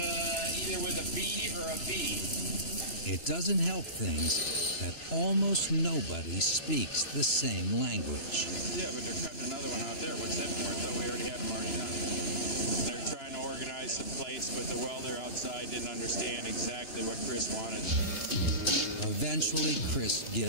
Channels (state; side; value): late; right; 3.0 ms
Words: with a B or a V. It doesn't help things that almost nobody speaks the same language. Yeah, but they're cutting another one out there. What's that for? I thought we already had them already done. They're trying to organize some plates, but the welder outside didn't understand exactly what Chris wanted. Eventually, Chris